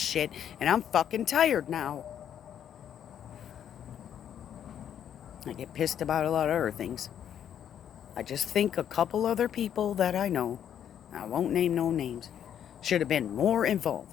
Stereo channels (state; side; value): quieter; right; 9.5 dB